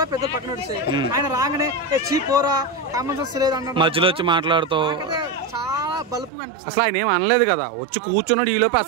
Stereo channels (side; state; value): left; drops out; at 6.3 s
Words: పెద్ద పక్కన నడిచాయి. ఆయన రాగానే చీపోరా కామన్ సెన్స్ లేదు అన్న మధ్యలో వచ్చి మాట్లాడుతూ చాలా బలుపుగా అనిపిస్తుంది. అసలు ఆయన ఏం అనలేదు కదా, వచ్చి కూర్చున్నాడు, ఈ లోపు